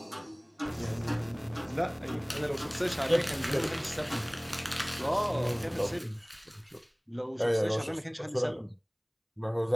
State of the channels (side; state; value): both; identical; correlation 1.00